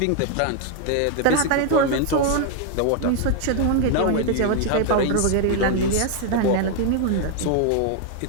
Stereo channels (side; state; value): both; different; correlation 0.00